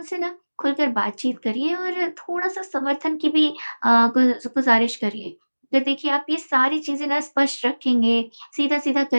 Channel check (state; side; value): inverted; both; correlation -1.00